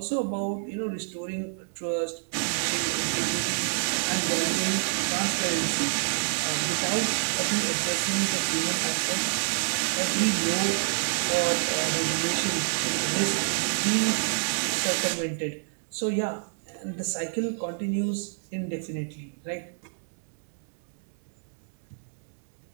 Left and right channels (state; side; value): silent; left; digital silence